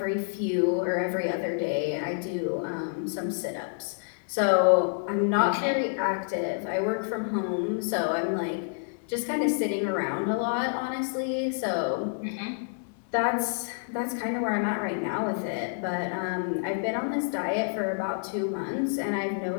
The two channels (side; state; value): right; silent; digital silence